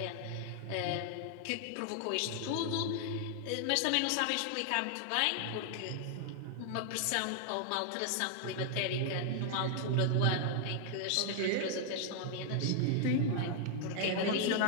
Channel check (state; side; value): different; both; correlation 0.00